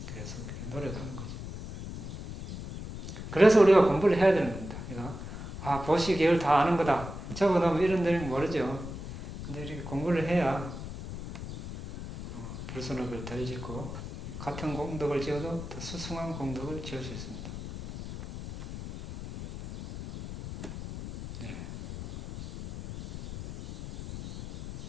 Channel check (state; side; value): noise; left; rumble, 9 dB below the sound